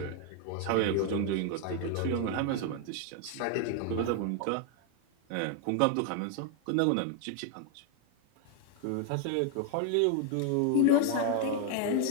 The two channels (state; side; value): different; both; correlation 0.01